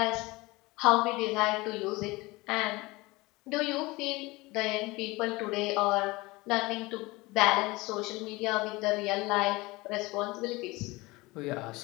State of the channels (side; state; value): right; quieter; 22.2 dB